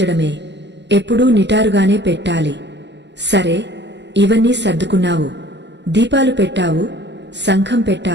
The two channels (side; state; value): left; late; 0.51 ms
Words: ఎప్పుడూ నిటారుగానే పెట్టాలి. సరే, ఇవన్నీ సర్దుకున్నావు. దీపాలు పెట్టావు, శంఖం